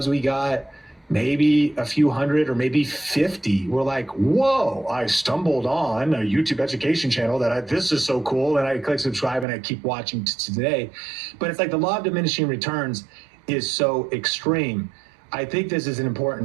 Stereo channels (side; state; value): left; drops out; at 9.5 s